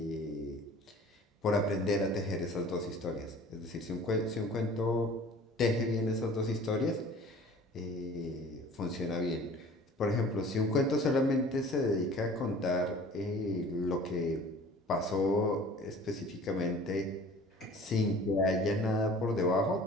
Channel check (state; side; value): normal; both; correlation 0.46